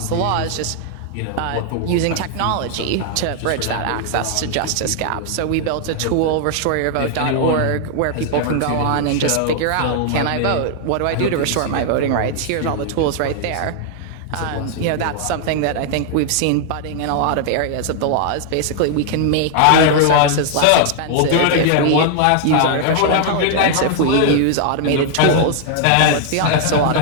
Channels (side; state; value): both; different; correlation 0.00